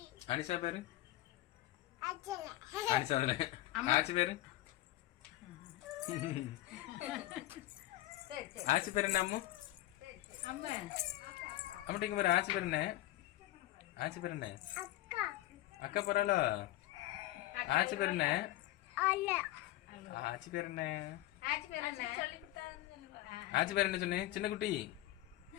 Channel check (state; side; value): quieter; right; 16.2 dB